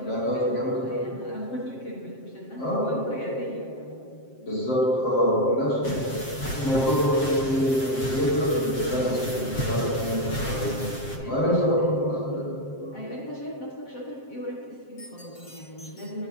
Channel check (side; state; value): right; late; 7.6 ms